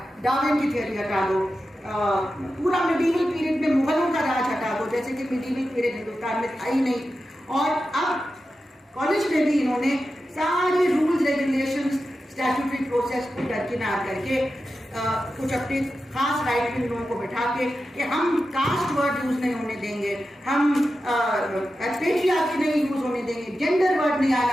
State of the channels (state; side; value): normal; both; correlation 0.91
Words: डार्विन की थ्योरी हटा दो, पूरा मिडीवल पीरियड में मुगलों का राज हटा दो, जैसे कि मिडीवल पीरियड हिंदुस्तान में था ही नहीं। और अब कॉलेज में भी इन्होंने सारे रूल्स रेगुलेशंस स्टैट्यूटरी प्रोसेस को दरकिनार करके कुछ अपने खास राइट विंग लोगों को बैठा के कि हम कास्ट वर्ड यूज नहीं होने देंगे, हम पेट्रियार्की नहीं यूज होने देंगे, जेंडर वर्ड नहीं